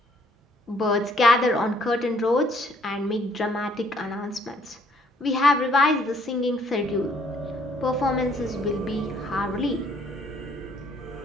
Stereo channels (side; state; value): both; normal; correlation 0.65